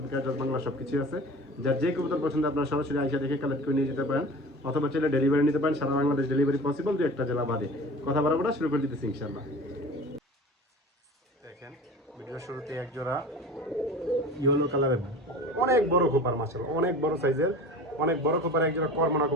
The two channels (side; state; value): both; normal; correlation 0.38